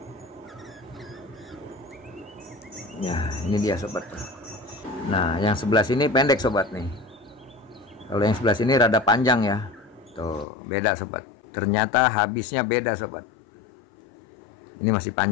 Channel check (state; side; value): drops out; right; at 10.5 s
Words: Ya ini dia sobat. Nah yang sebelah sini pendek sobat nih, kalau yang sebelah sini rada panjang ya, tuh beda sobat. Ternyata habisnya beda sobat. Ini masih